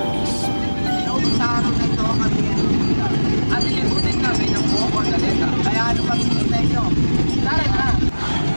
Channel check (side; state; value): both; inverted; correlation -1.00